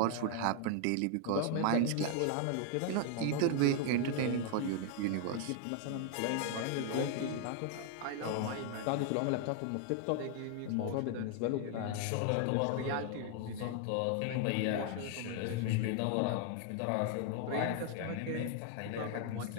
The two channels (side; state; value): both; different; correlation 0.00